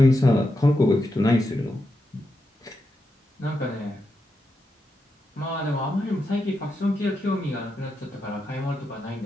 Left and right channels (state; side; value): normal; both; correlation 0.86